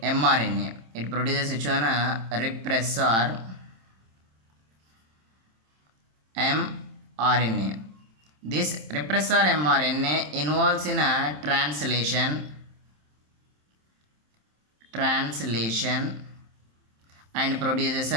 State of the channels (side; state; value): left; late; 27 ms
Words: mRNA. It produces which one repressor mRNA. This repressor mRNA involves in a translation and produces